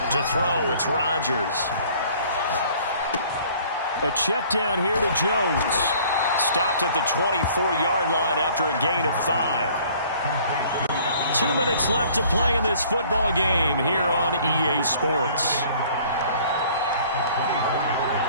To throw, it's Rodgers. A check down here to Jones. Stopped at the 24-yard line after a gain of 5. 2 minutes left to play in this football game here on EA Sports.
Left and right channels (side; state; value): both; inverted; correlation -0.54